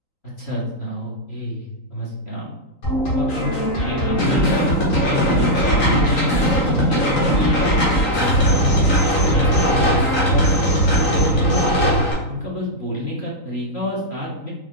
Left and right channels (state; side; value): late; right; 3.9 ms